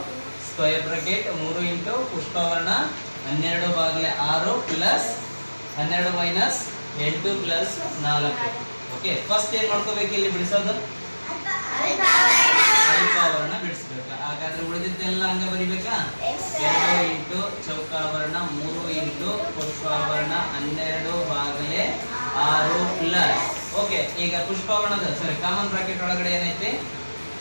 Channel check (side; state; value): both; inverted; correlation -1.00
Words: square bracket 3 into ಪುಷ್ಪವರ್ಣ 12 ಭಾಗಲೆ 6 plus 12 minus 8 plus 4. Okay, first ಏನ್ ಮಾಡ್ಕೋಬೇಕು ಇಲ್ಲಿ ಬಿಡಿಸೋದು? ಅಲ್ಪಾವರ್ಣ ಬಿಡಿಸ್ಬೇಕು. ಹಾಗಾದ್ರೆ ಉಳಿದಿದ್ದೆಲ್ಲ ಹಂಗ ಬರಿಬೇಕಾ? 2 ಇಂಟು ಚೌಕಾವರ್ಣ 3 ಇಂಟು ಪುಷ್ಪಾವರ್ಣ 12 ಭಾಗಲೆ 6 ಪ್ಲಸ್. ಓಕೆ, ಈಗ ಪುಷ್ಪಾವರ್ಣದ ಕಾಮನ್ ಬ್ರಾಕೆಟ್ ಒಳಗಡೆ ಏನೈತಿ?